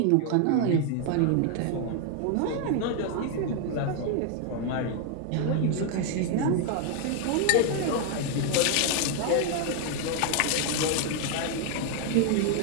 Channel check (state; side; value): different; both; correlation 0.00